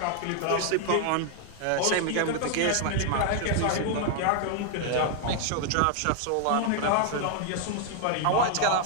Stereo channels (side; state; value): both; different; correlation 0.00